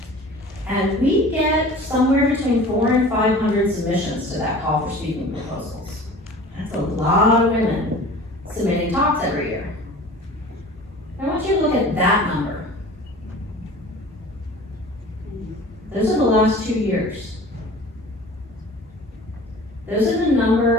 And we get somewhere between 400 and 500 submissions to that call for speaking proposals. That's a lot of women submitting talks every year. I want you to look at that number. Those are the last 2 years. Those are the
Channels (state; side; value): normal; both; correlation 0.42